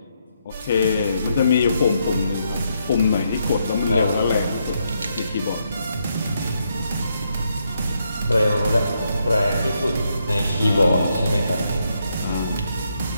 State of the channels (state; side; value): inverted; both; correlation -0.78